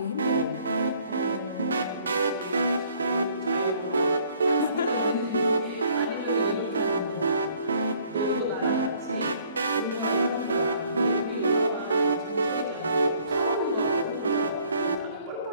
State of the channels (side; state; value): both; inverted; correlation -0.60